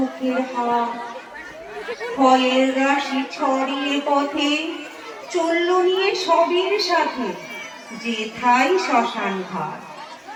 হাত। ভয়ের রাশি ছড়িয়ে পথে চলল নিয়ে সবের সাথে, যেথায় শ্মশান ঘাট।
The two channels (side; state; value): both; identical; correlation 1.00